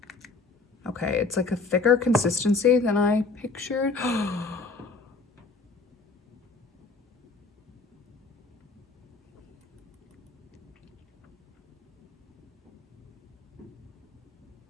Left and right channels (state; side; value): quieter; right; 3.8 dB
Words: Okay, it's like a thicker consistency than I pictured.